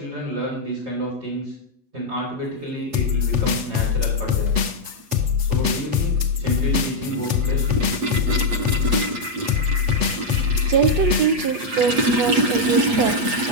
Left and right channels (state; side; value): late; left; 8.3 ms